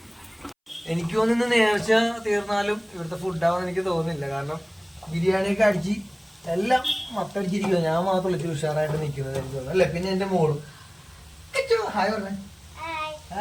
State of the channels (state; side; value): identical; both; correlation 1.00